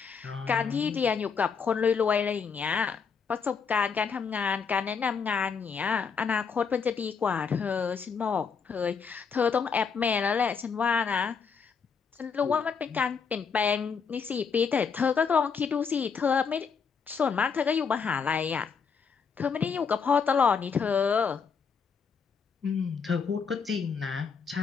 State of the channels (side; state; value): right; quieter; 6.0 dB